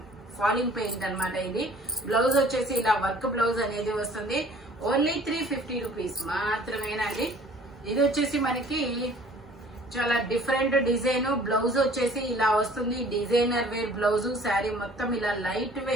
ఫాలింగ్ పెయింట్ అన్నమాట. ఇది బ్లౌజ్ వచ్చేసి ఇలా వర్క్ బ్లౌజ్ అనేది వస్తుంది. ఓన్లీ 350 రూపీస్ మాత్రమేనండి. ఇది వచ్చేసి మనకి చాలా డిఫరెంట్ డిజైన్. బ్లౌజ్ వచ్చేసి ఇలా వస్తుంది. Designer wear blouse. శారీ మొత్తం ఇలా లైట్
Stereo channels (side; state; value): both; normal; correlation 0.52